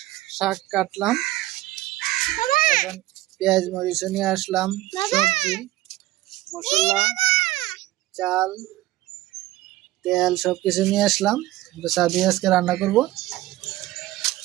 শাক কাটলাম, এখন পেঁয়াজ মরিচ নিয়ে আসলাম, সবজি মশলা চাল তেল সবকিছু নিয়ে আসলাম। ছাদে আজকে রান্না করব।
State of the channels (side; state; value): left; quieter; 16.7 dB